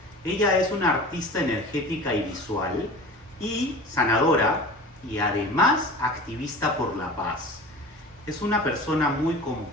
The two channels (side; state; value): both; normal; correlation 0.37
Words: Ella es una artista energética y visual y sanadora y además activista por la paz. Es una persona muy